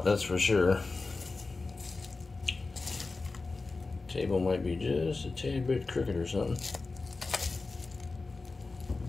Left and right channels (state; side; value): quieter; right; 3.7 dB